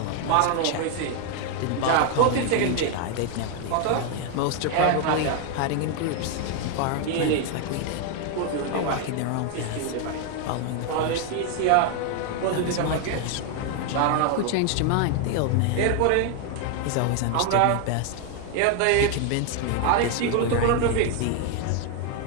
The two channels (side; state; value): both; different; correlation 0.01